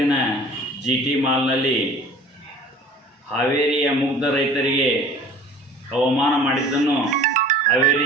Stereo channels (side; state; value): both; normal; correlation 0.46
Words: GT ಮಾಲ್ನಲ್ಲಿ ಹಾವೇರಿಯ ಮುಗ್ಧ ರೈತರಿಗೆ ಅವಮಾನ ಮಾಡಿದ್ದನ್ನು